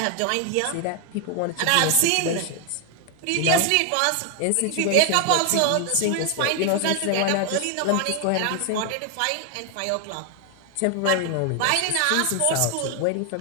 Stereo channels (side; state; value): both; different; correlation 0.00